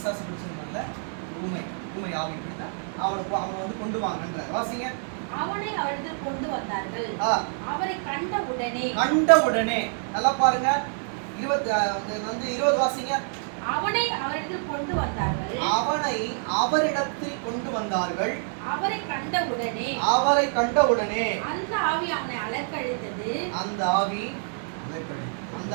பிடிச்சிருந்தாங்கல்ல, ஊமை ஆவி இப்படிதான். அவனை வந்து கொண்டு வாங்கன்றார். வாசிங்க. அவனை அவரிடத்தில் கொண்டு வந்தார்கள். அவரை கண்ட உடனே நல்லா பாருங்க. 20 வாசிங்க. அவனை அவரிடத்தில் கொண்டு வந்தார்கள். அவனை அவரிடத்தில் கொண்டு வந்தார்கள். அவரை கண்ட உடனே அந்த ஆவி அவனை அலக்கழித்தது. அந்த ஆவி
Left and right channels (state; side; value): silent; left; 59 dB below the other